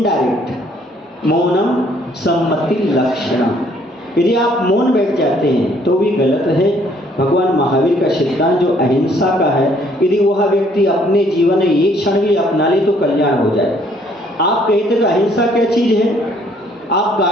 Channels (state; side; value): normal; both; correlation 0.63